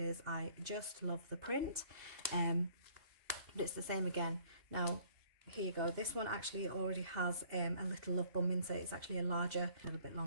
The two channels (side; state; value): left; late; 2.5 ms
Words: I just love the print. But it's the same again. Now, here you go. This one actually already has a little love bum insert. It's actually a little bit